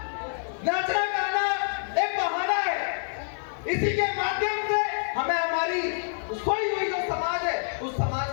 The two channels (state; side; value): silent; right; digital silence